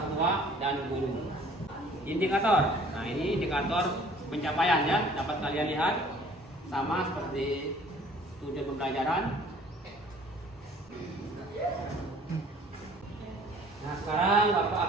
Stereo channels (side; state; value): both; normal; correlation 0.53